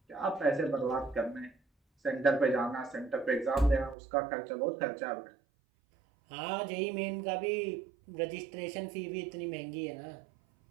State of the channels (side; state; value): left; drops out; at 4.0 s